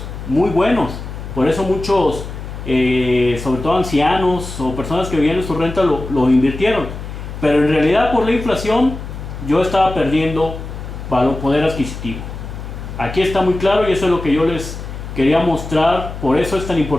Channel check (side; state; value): left; noise; hum, 9 dB below the sound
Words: Muy buenos. Por eso muchos, sobre todo ancianos o personas que vivían de su renta, lo invirtieron. Pero en realidad, por la inflación, yo estaba perdiendo poder adquisitivo. Aquí está muy claro, y eso es lo que yo les quería mostrar. Por eso es tan